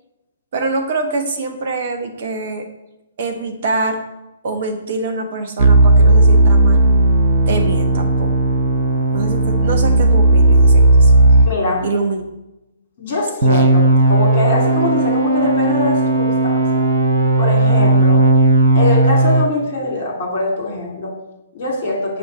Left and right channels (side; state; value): both; inverted; correlation -0.57